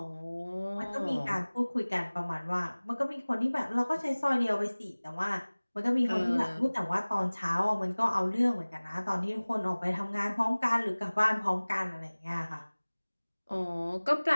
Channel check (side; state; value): both; inverted; correlation -1.00